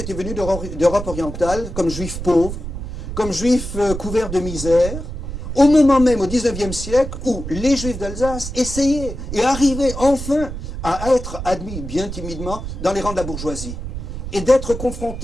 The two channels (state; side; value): noise; right; rumble, 7 dB below the sound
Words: venus d'Europe orientale comme Juifs pauvres, comme Juifs couverts de misère, au moment même, au XIXe siècle, où les Juifs d'Alsace essayaient et arrivaient enfin à être admis, bien timidement, dans les rangs de la bourgeoisie. Et d'être